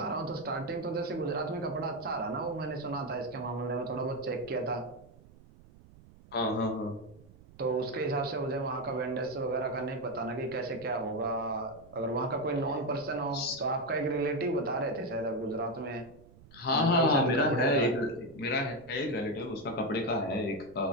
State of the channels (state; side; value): noise; right; rumble, 23 dB below the sound